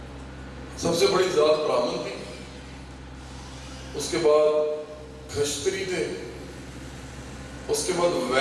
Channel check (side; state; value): both; identical; correlation 1.00